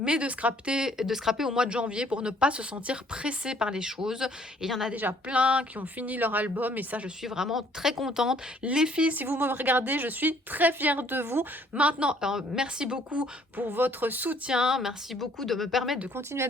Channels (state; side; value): normal; both; correlation 0.61